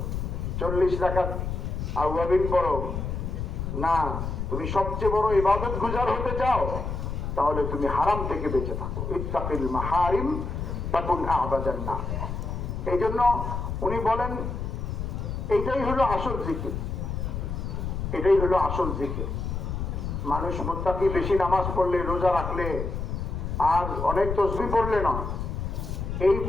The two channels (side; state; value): left; noise; rumble, 4 dB below the sound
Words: 40 রাকাত আওয়াবিন পড়ো, না তুমি সবচেয়ে বড় ইবাদত গুজার হতে চাও, তাহলে তুমি হারাম থেকে বেঁচে থাকো। ইত্তাকিল মাহারিম তাকুন আবাদান নাস। এই জন্য উনি বলেন এটাই হলো আসল জিকির, এটাই হলো আসল জিকির। মানুষ মুত্তাকি বেশি নামাজ পড়লে, রোজা রাখলে, আর অনেক তসবিহ পড়লে না,